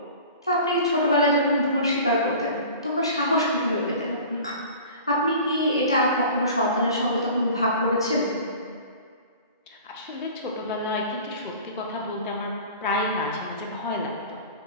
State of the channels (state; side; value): inverted; both; correlation -0.41